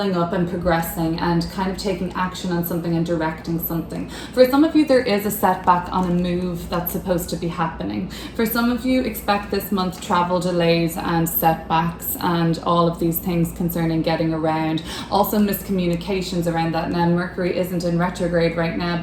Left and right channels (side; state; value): both; identical; correlation 1.00